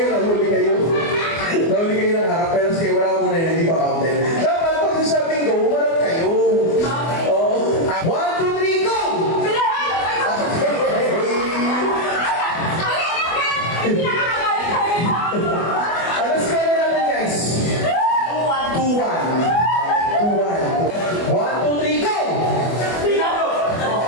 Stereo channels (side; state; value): right; late; 24 ms